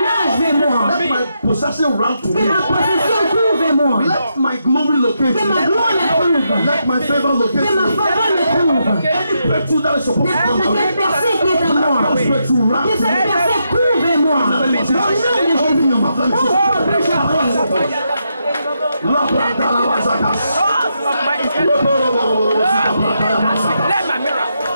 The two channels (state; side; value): inverted; both; correlation -0.82